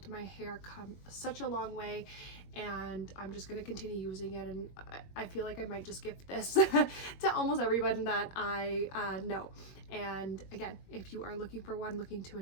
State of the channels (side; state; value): right; late; 21 ms